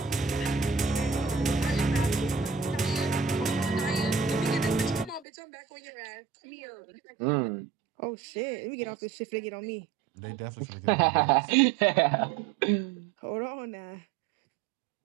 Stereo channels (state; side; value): drops out; left; at 5.2 s